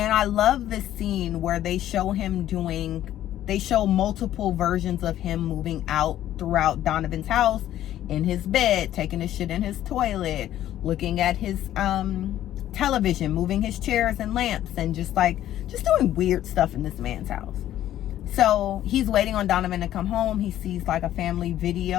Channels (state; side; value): quieter; right; 12.5 dB